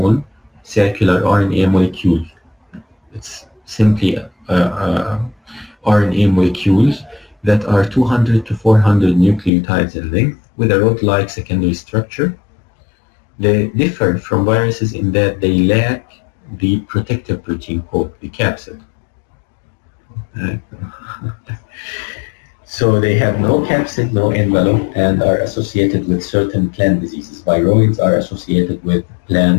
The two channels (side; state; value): right; drops out; at 9.5 s